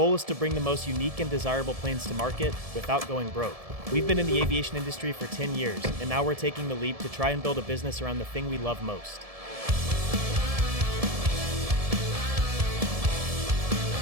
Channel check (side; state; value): left; late; 1.7 ms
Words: is to bring the most unique and desirable planes to market without going broke. We've been in the aviation industry for 10 years, and now we're taking the leap to try and build a business around the thing we love most.